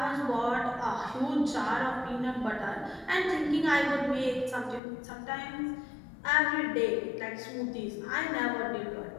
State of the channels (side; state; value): right; drops out; at 4.8 s